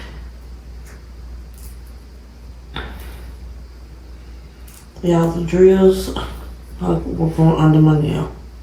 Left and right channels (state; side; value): identical; both; correlation 1.00